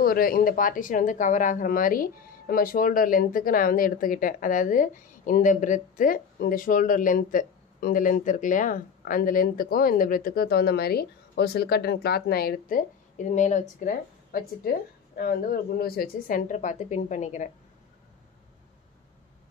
ஒரு இந்த பார்ட்டிஷன் வந்து கவர் ஆகிற மாதிரி நம்ம ஷோல்டர் லென்த்துக்கு நான் வந்து எடுத்துக்கிட்டேன். அதாவது இந்த பிரெத்து இந்த ஷோல்டர் லென்த்து இந்த லென்த் இருக்கு இல்லையா, அந்த லென்த்துக்கும் இந்த பிரெத்துக்கும் தகுந்த மாதிரி ஒரு சில்க் காட்டன் கிளாத் நான் எடுத்து இது மேலே வச்சுக்கிறேன். வச்சுட்டு நான் வந்து ஒரு குண்டு ஊசி வச்சு சென்டர் பார்த்து பின் பண்ணிக்கிறேன்.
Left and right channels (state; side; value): quieter; right; 6.7 dB